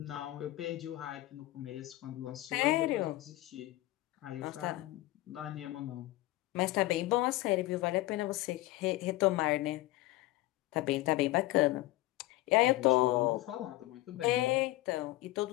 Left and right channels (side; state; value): right; quieter; 17.9 dB